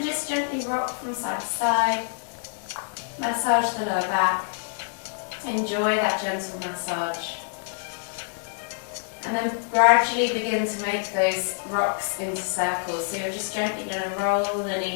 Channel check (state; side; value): silent; right; 61 dB below the other